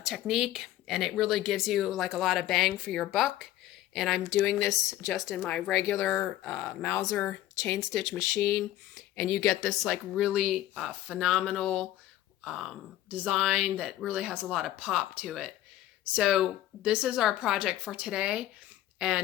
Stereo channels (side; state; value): right; quieter; 14.1 dB